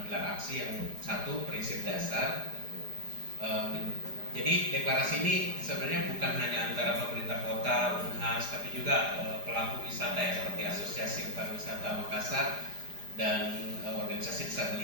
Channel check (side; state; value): left; late; 4.9 ms